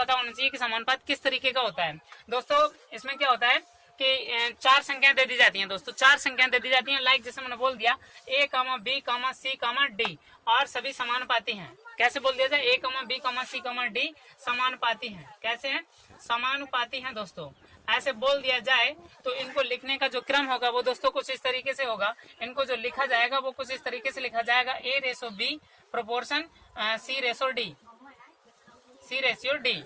होना चाहिए कि समानुपात किस तरीके का होता है। दोस्तों इसमें क्या होता है कि चार संख्याएं दे दी जाती हैं दोस्तों। चार संख्याएं दे दी जाती हैं, लाइक जैसे मैंने बोल दिया A, B, C, D और सभी समानुपाती हैं। कैसे बोल दिया जाए, A, B, C, D समानुपाती हैं। कैसे हैं? समानुपाती हैं दोस्तों। ऐसे बोल दिया जाए तो इनको लिखने का जो क्रम होगा वो दोस्तों कुछ इस तरीके से होगा। इनको जो लिखा जाएगा वो कुछ इस तरीके से लिखा जाएगा A/B प्रोपोर्शन C/D।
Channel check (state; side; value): identical; both; correlation 1.00